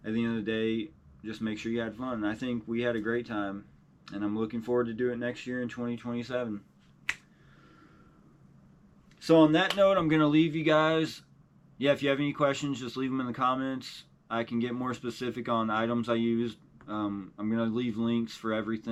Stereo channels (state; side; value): identical; both; correlation 1.00